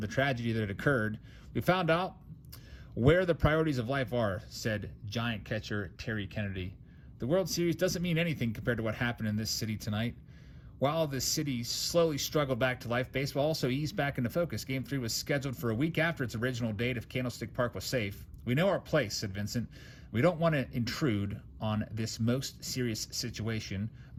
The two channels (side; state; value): both; identical; correlation 1.00